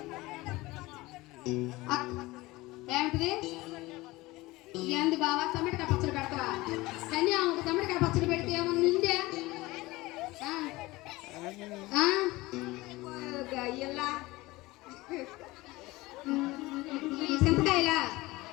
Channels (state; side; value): quieter; right; 20.3 dB